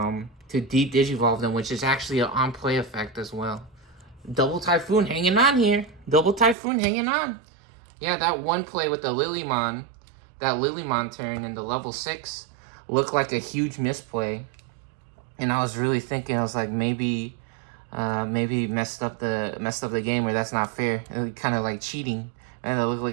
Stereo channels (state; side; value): drops out; left; at 6.6 s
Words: To digivolve them, which is actually an on-play effect as well. Double Typhoon hanging on here. Double Typhoon hanging on. Yeah, that one play with the Lilymon, that Lilymon turn in the level 6 looked like a huge misplay. And I was really thinking, I was like, maybe messed up the game, or that's not fair. It was kind of like cheating. And it looked